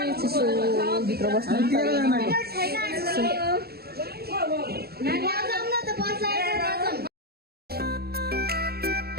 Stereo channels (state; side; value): late; left; 0.46 ms